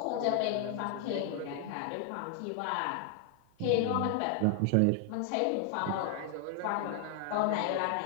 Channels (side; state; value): both; different; correlation 0.00